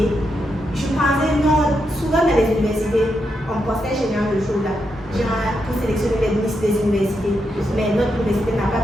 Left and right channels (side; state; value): both; normal; correlation 0.83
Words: je pensais, non, souvent dans les universités, on postait chez nous le jour là, genre pour sélectionner les Miss des universités. Mais notre université n'a